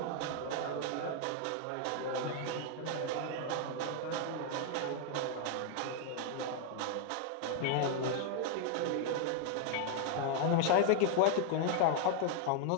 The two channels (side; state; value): both; different; correlation 0.00